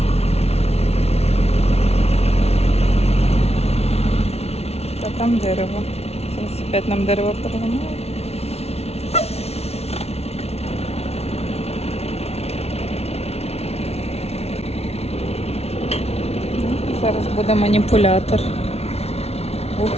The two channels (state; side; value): late; right; 0.30 ms